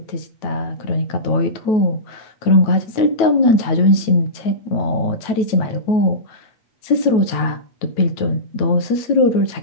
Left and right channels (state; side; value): late; right; 9.1 ms